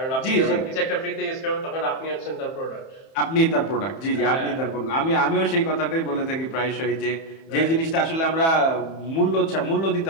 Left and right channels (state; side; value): late; right; 31 ms